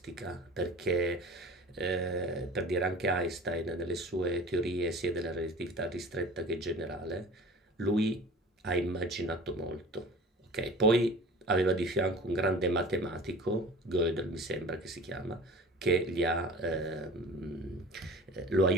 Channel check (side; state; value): both; normal; correlation 0.41